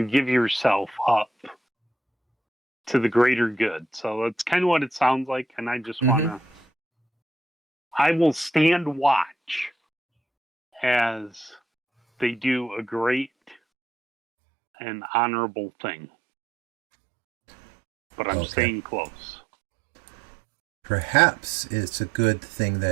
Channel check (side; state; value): left; drops out; at 13.6 s